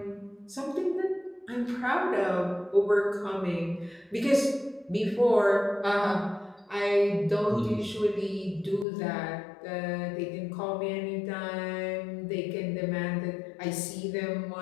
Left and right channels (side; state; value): right; drops out; at 8.8 s